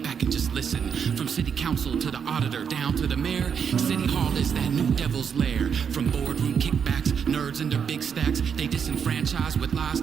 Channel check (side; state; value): left; quieter; 7.1 dB